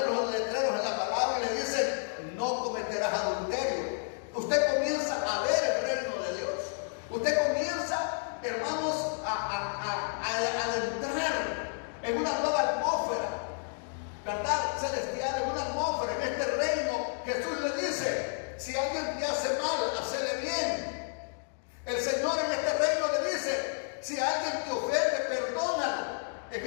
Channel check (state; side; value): silent; right; digital silence